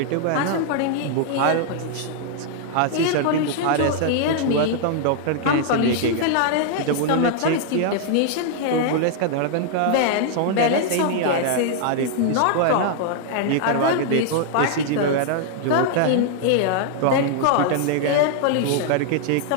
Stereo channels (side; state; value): both; different; correlation -0.01